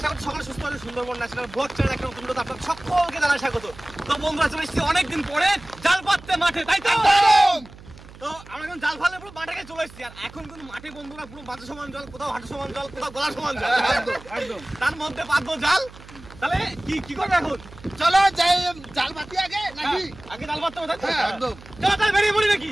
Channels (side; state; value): right; noise; hum, 19 dB below the sound